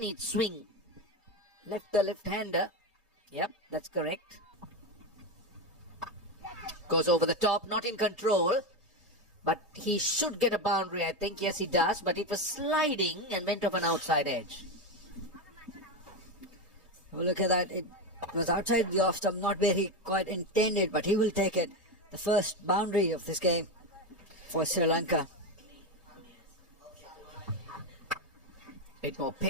swing. The left-hander. Yep, that's correct. Goes over the top, not in control. But he should get a boundary, I think. Yes, he does. But it was sliding and went off an outside edge. Well, look at that. It was outside the off stump, not where he quite intended, but he will take it. The first boundary of this game for Sri Lanka. Bit more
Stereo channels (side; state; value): both; normal; correlation 0.14